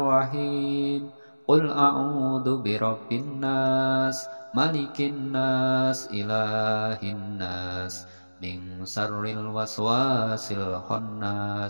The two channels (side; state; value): both; inverted; correlation -1.00